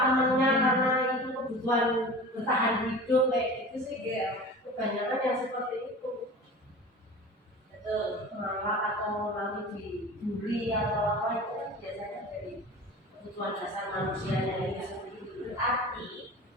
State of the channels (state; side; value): normal; both; correlation 0.36